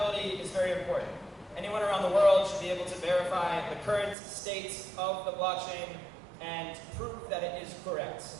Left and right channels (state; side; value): drops out; left; at 4.2 s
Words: is very important. Anyone around the world should be able to verify the current state of the blockchain and prove that it is correct.